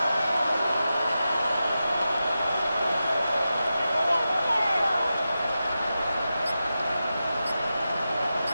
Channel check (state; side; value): inverted; both; correlation -0.91